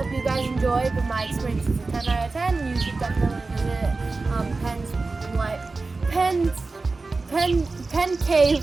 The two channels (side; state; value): left; quieter; 3.7 dB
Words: you guys enjoyed, but my experience is a 10 out of 10. You should definitely visit Penn Cave